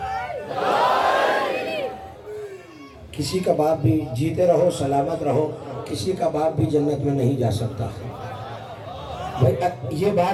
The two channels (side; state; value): both; identical; correlation 1.00